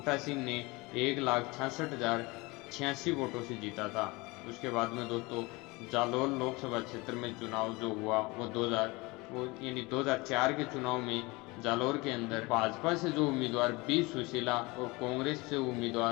सिंह ने 1,66,086 वोटों से जीता था। उसके बाद में दोस्तों, जालौर लोकसभा क्षेत्र में चुनाव जो हुआ वो 2004 के चुनाव में जालौर के अंदर भाजपा से जो उम्मीदवार बी सुशीला और कांग्रेस से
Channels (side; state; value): right; quieter; 24.3 dB